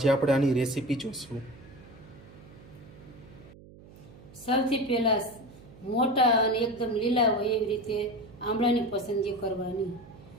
આપણે આની રેસીપી જોઈશું. સૌથી પહેલાં મોટા અને એકદમ લીલા હોય એવી રીતે આમળાની પસંદગી કરવાની.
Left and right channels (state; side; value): noise; right; hum, 21 dB below the sound